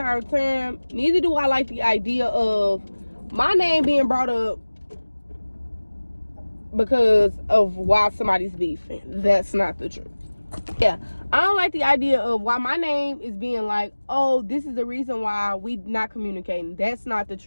time. Neither do I like the idea of my name being brought up because of why somebody's beefing. That's not the truth. Yeah, I don't like the idea of why my name is being like, oh, this is the reason why we not communicating. That's not the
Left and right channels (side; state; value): both; inverted; correlation -1.00